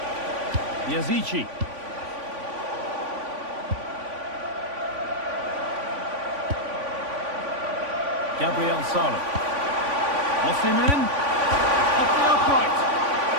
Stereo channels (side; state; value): left; late; 3.5 ms